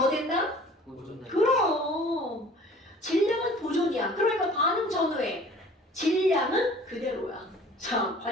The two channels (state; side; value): normal; both; correlation 0.48